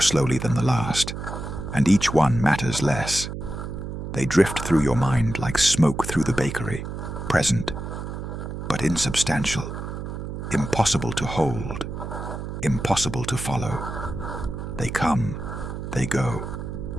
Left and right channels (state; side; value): noise; right; hum, 7 dB below the sound